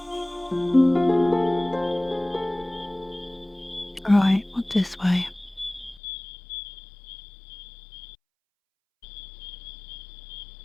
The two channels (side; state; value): right; drops out; at 6.0 s